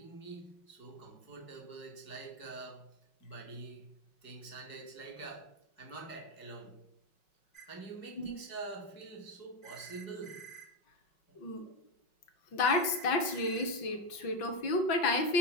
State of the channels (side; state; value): right; late; 5.4 ms